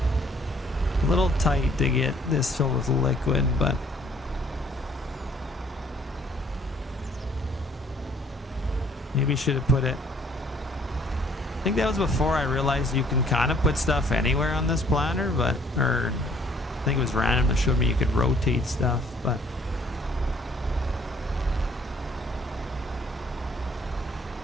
A little tight to get this filled with liquid, but maybe should have put it. I think that was before I realized you can kind of put stuff anywhere on this planter, but, or I think it was random that showed me you could rotate stuff, but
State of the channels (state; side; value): normal; both; correlation 0.60